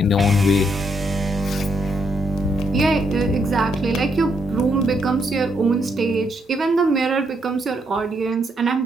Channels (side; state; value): both; normal; correlation 0.76